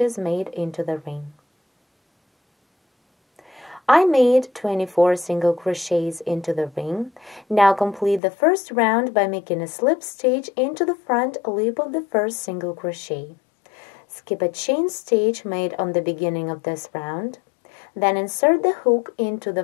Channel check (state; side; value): drops out; right; at 8.2 s